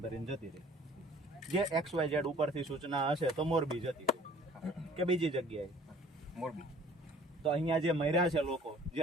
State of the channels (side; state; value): both; normal; correlation 0.52